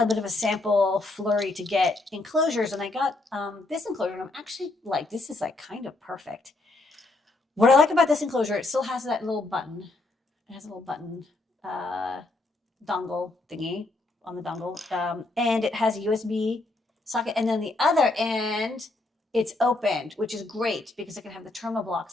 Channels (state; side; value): quieter; right; 3.0 dB